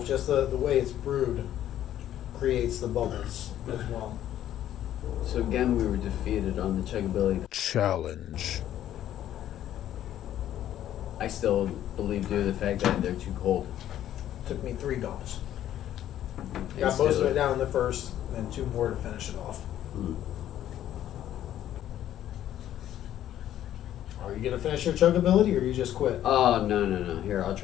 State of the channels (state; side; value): quieter; right; 11.8 dB